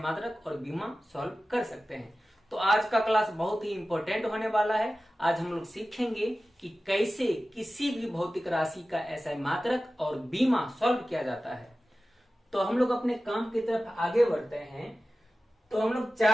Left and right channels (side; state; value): both; normal; correlation 0.95